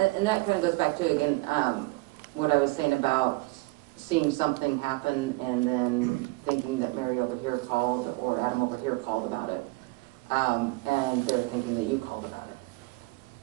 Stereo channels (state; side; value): quieter; left; 23.5 dB